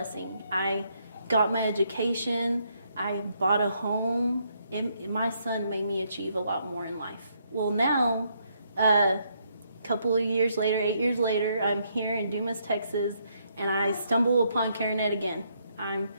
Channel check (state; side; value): inverted; both; correlation -0.74